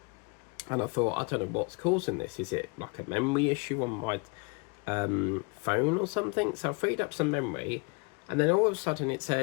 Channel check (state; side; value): quieter; right; 31.7 dB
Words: And I thought, I don't know what's causing this. Is it like a memory issue on my phone or something? So I freed up some memory, and then all of a sudden it